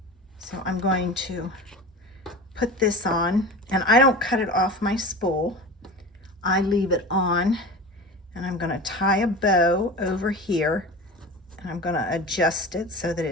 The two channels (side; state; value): both; normal; correlation 0.32